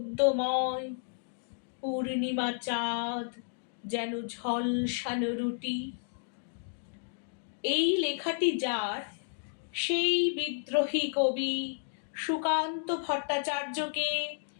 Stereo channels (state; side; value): silent; right; digital silence